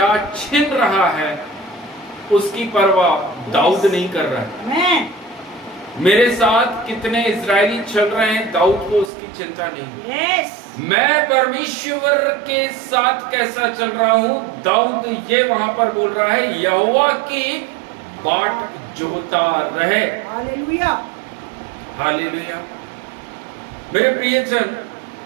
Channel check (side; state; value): left; drops out; at 9.1 s